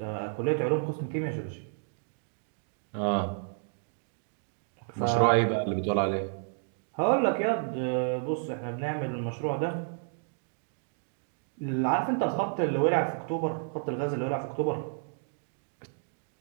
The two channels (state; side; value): silent; left; digital silence